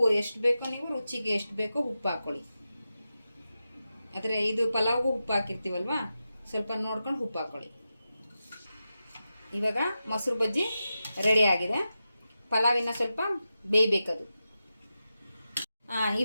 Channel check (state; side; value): inverted; both; correlation -0.91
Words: ಎಷ್ಟು ಬೇಕೋ, ನೀವು ರುಚಿಗೆ ಎಷ್ಟು ಬೇಕೋ ಉಪ್ಪು ಹಾಕ್ಕೊಳ್ಳಿ. ಆದರೆ ಇದು ಪಲಾವ್ಗೂ ಉಪ್ಪು ಹಾಕಿರ್ತೀವಲ್ವ, ಸ್ವಲ್ಪ ನೋಡ್ಕೊಂಡು ಉಪ್ಪು ಹಾಕ್ಕೊಳ್ಳಿ. ಇವಾಗ ಮೊಸರು ಬಜ್ಜಿ ರೆಡಿ ಆಗಿದೆ. ಪಲಾವಿನ ಸ್ವಲ್ಪ ಬೇಯಬೇಕದು.